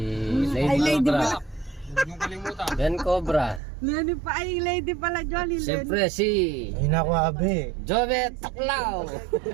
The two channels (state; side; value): drops out; left; at 3.6 s